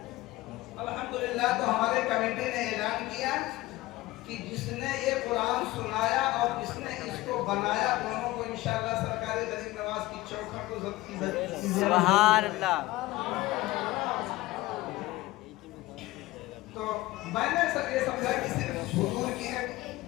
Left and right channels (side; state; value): right; quieter; 18.4 dB